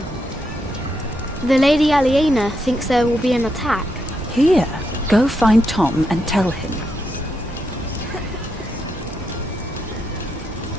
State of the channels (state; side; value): normal; both; correlation 0.81